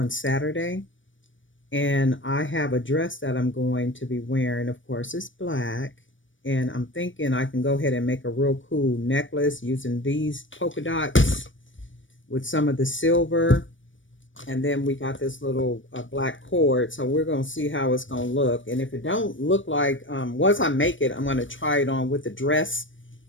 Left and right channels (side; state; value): right; late; 0.56 ms